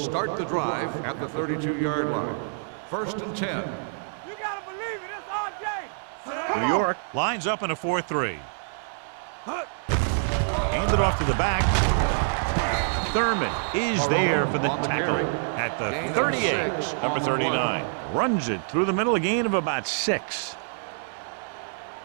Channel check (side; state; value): left; silent; digital silence